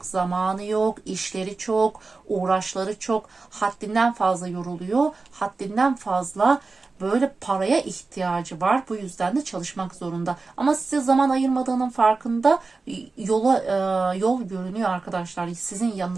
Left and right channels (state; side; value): quieter; left; 3.9 dB